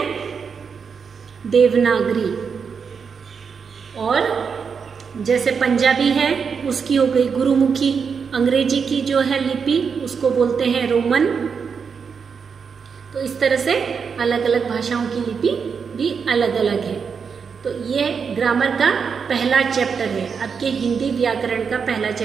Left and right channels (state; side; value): quieter; left; 6.1 dB